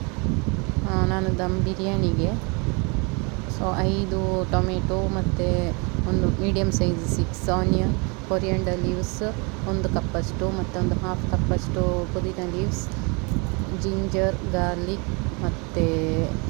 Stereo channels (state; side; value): quieter; left; 31.1 dB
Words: ನಾನು ದಮ್ ಬಿರಿಯಾನಿಗೆ 5 ಟೊಮೆಟೊ ಮತ್ತು ಒಂದು medium size 6 onion, coriander leaves 1 ಕಪ್ಪಷ್ಟು ಮತ್ತು ಒಂದು ಹಾಫ್ ಕಪ್ಪಷ್ಟು ಪುದೀನ ಲೀವ್ಸ್, ಜಿಂಜರ್, ಗಾರ್ಲಿಕ್ ಮತ್ತು